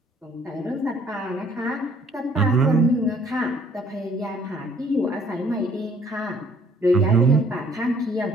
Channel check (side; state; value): both; normal; correlation 0.60